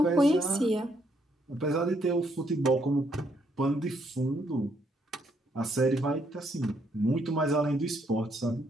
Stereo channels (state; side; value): normal; both; correlation 0.73